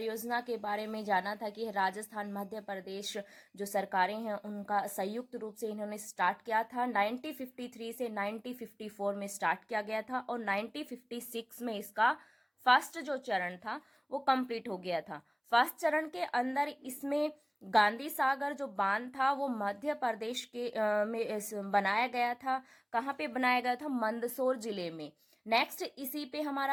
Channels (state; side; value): identical; both; correlation 1.00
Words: के बारे में जाना था कि राजस्थान मध्य प्रदेश जो सरकारें हैं उनका संयुक्त रूप से इन्होंने स्टार्ट किया था। 1953 से 1954 में स्टार्ट किया गया था और 1956 में इसका फर्स्ट जो चरण था वो कंप्लीट हो गया था। फर्स्ट चरण के अंदर इसमें गांधी सागर जो बांध था वो मध्य प्रदेश के में बनाया गया था। कहाँ पे बनाया गया था? मंदसौर जिले में। नेक्स्ट इसी पे